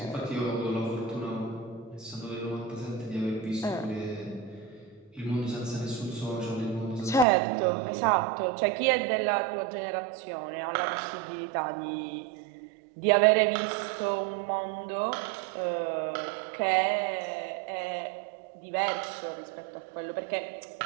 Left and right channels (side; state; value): left; drops out; at 7.2 s